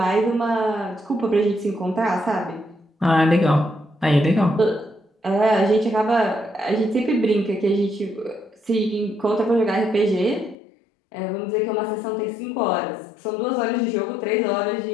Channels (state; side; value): drops out; right; at 10.6 s